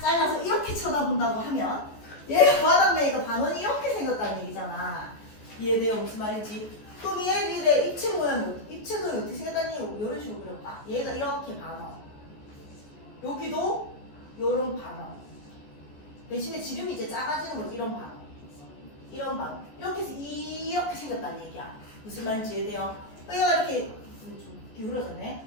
잘라서 이렇게 쳐다본다고 하면 얘가 바닥면이니까 반원이 이렇게 생겼다는 얘기잖아. 이해돼요? 무슨 말인지? 그럼 얘의 입체 모양이 입체 도형이 어떻게 생겼다는 얘기 이런 식으로 그려봐. 얘가 이렇게 반원 여기도 요런 반원 대신에 지름이 이제 작아지는 거지. 이런 반원 이런 반원 이렇게 해서 이렇게 생겼다는 얘기야. 무슨 말인지 이해돼요? 얘가 이렇게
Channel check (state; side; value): late; right; 14 ms